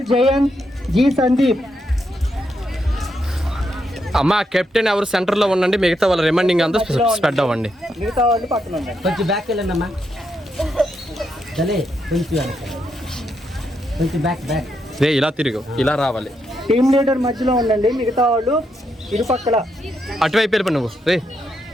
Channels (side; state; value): both; normal; correlation 0.81